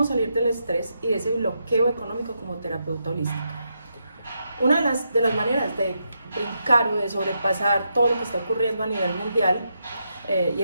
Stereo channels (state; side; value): inverted; both; correlation -0.82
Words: salir del estrés y de ese bloqueo económico como terapeuta holística. Una de las maneras de brincar o de sobrepasar todo lo que está ocurriendo a nivel mundial y